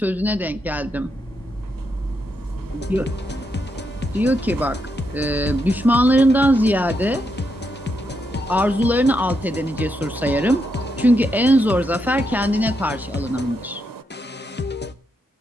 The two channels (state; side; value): normal; both; correlation 0.81